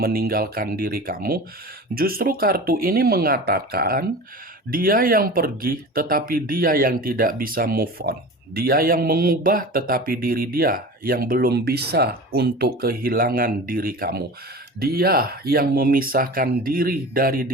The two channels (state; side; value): normal; both; correlation 0.34